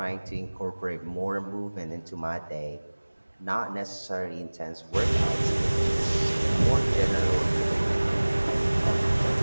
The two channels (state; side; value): inverted; both; correlation -1.00